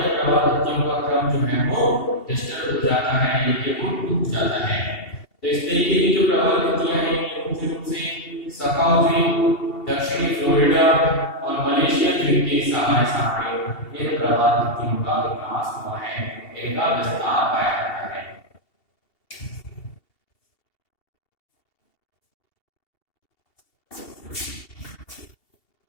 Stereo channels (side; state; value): right; late; 2.7 ms